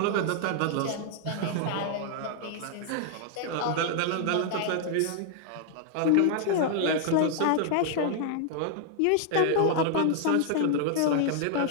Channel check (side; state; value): both; different; correlation 0.00